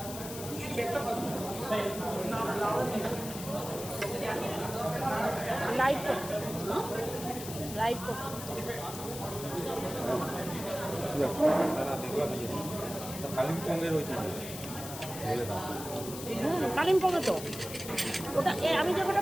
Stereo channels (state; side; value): noise; left; hiss, 10 dB below the sound